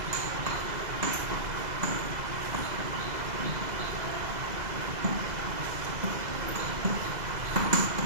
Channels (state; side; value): late; left; 2.0 ms